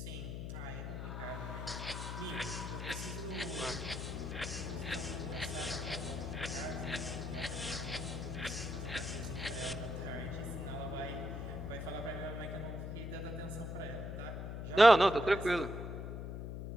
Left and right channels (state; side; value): noise; left; hum, 5 dB below the sound